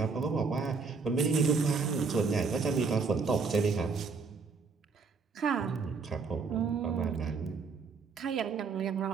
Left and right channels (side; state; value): left; quieter; 4.8 dB